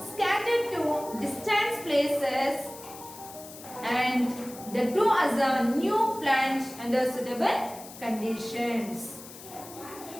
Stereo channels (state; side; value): noise; left; hiss, 16 dB below the sound